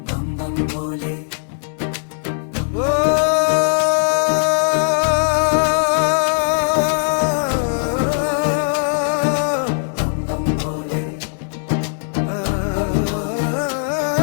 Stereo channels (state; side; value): silent; right; digital silence